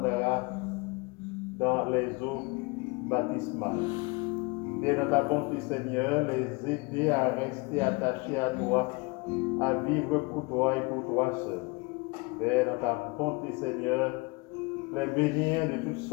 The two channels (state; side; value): quieter; right; 27.0 dB